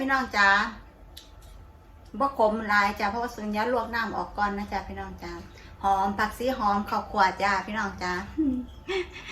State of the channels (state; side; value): identical; both; correlation 1.00